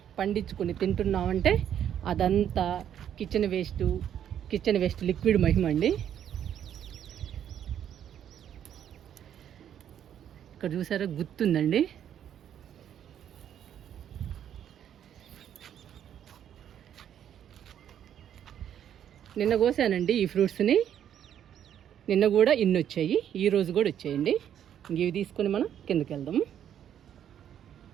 పండించుకొని తింటున్నామంటే అదంతా కిచెన్ వేస్ట్ లిక్విడ్ మహిమ అండి. ఇక్కడ చూసారా గుర్తుందండి. నిన్న కోసానండి ఈ ఫ్రూట్స్ని. నిన్న కూడా ఇన్ని వచ్చాయి, ఈరోజు కూడా వచ్చాయండి. ఇవి తీసుకొని మనం కిందకి వెళ్దాము.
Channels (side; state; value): left; quieter; 9.8 dB